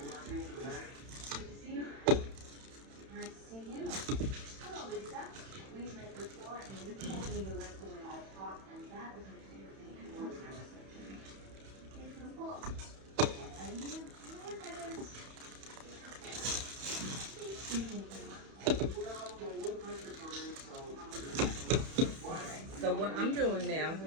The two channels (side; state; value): left; late; 31 ms